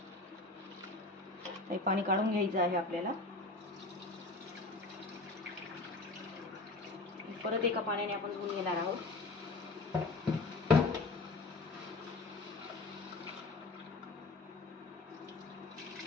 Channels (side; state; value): right; quieter; 3.2 dB